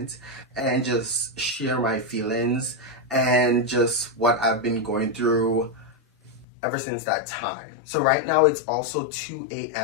and just share my feelings and just what I've been going through ever since that time. So right now it's also 2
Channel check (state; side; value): drops out; right; at 6.5 s